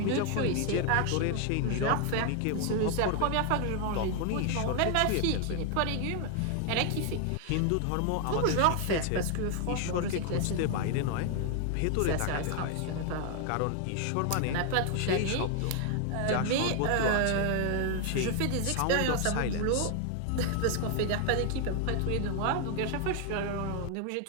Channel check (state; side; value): different; both; correlation 0.00